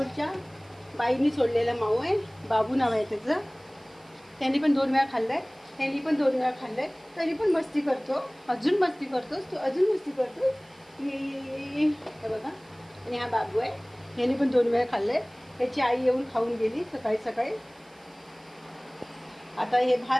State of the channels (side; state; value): right; noise; hiss, 30 dB below the sound